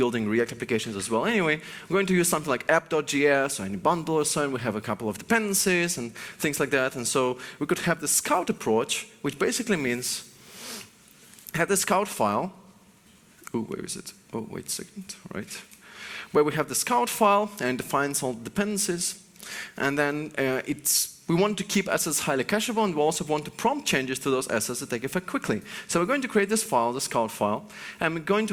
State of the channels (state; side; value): identical; both; correlation 1.00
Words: React applications as well anyway, we're going to use something like app.js or any bundle or so, and we have a couple of dependencies and things like that. And so we could have the scout approach, which basically means have the scout file. Oh, where is it? Oh, wait a second, right. Where we have the scout file and defines all the dependencies. And then we want to keep assets highly cacheable, and we also want to prompt changes to those assets to take effect quickly. So we're going to create this file, the scout file, and we're going to